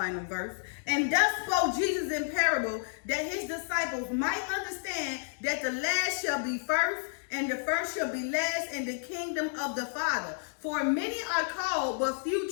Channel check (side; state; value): right; silent; 57 dB below the other